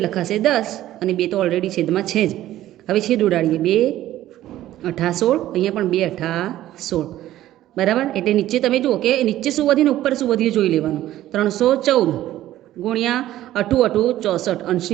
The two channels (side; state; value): left; quieter; 13.9 dB